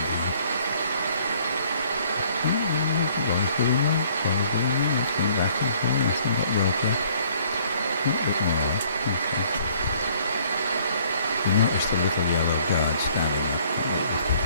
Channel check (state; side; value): inverted; both; correlation -0.61